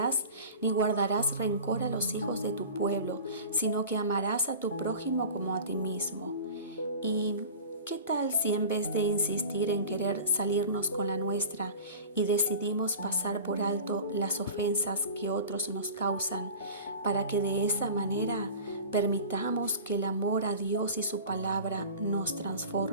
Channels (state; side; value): inverted; both; correlation -0.37